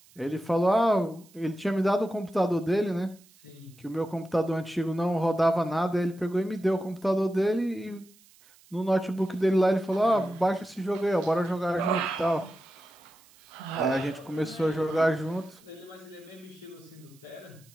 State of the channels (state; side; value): noise; right; hiss, 28 dB below the sound